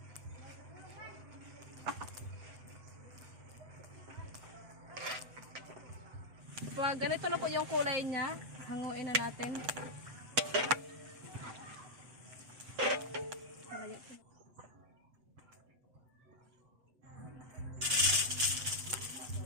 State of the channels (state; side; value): late; left; 7.9 ms